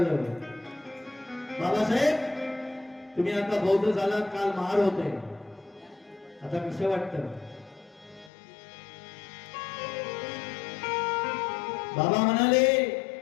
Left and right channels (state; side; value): drops out; right; at 8.3 s